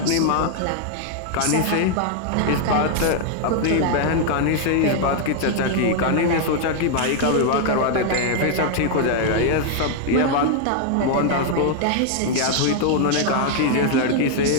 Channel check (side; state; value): both; different; correlation 0.00